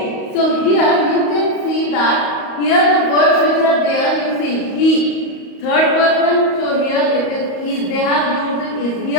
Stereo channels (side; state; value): right; late; 38 ms